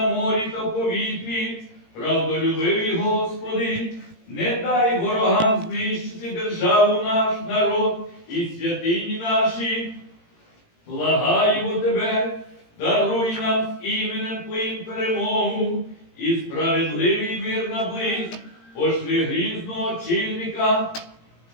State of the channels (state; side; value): late; right; 18 ms